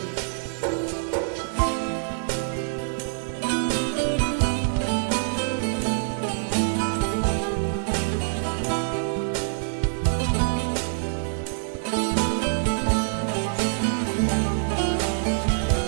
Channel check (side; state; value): left; silent; 58 dB below the other